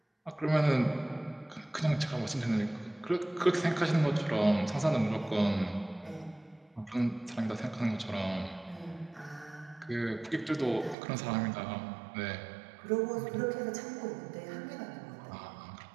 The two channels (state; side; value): drops out; left; at 11.0 s